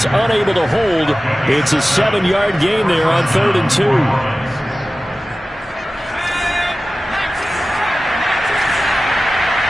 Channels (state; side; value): normal; both; correlation 0.96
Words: unable to hold. It's a 7-yard gain there on 3rd and 2.